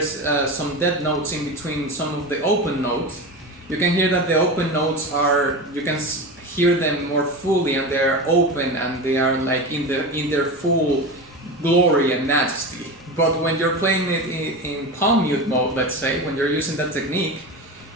some dead notes in between some of the open notes. You can hear that the open notes you can hear them more fully, and they're open and they are like in their full glory and majesty. But when you're playing it in palm mute mode, let's say, when you're using that technique,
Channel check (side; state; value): both; normal; correlation 0.25